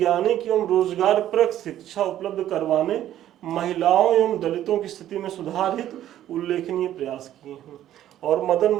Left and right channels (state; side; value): quieter; left; 12.2 dB